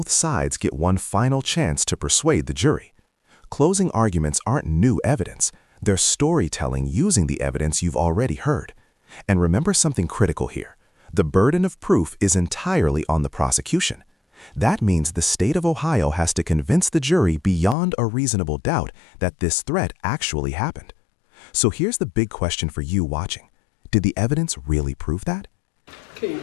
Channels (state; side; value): drops out; right; at 17.8 s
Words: sides get one final chance to persuade the jury. Closing arguments aren't new evidence. They're storytelling using the evidence you've already heard. And remember something critical here. The burden of proof is entirely on the prosecution. That means the state of Ohio has to convince the jury beyond a reasonable doubt that this threat actually happened. So here's the big question for you watching. Did the evidence really prove that? Okay, you